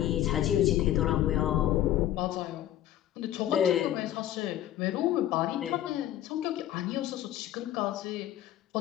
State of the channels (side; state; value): right; quieter; 12.6 dB